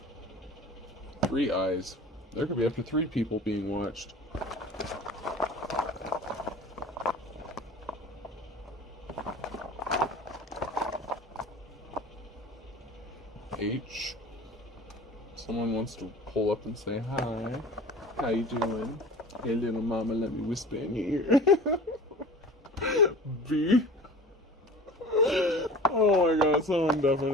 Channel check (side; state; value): both; normal; correlation 0.40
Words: Three eyes. There could be up to 3 people being watched. H. Someone wants to pull up and say hi. How you doing? Hey little mama, let me whisper in your ear. B. Oh my god, someone